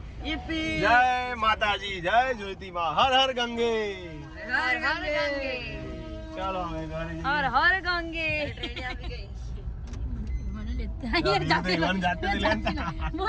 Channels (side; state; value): both; identical; correlation 1.00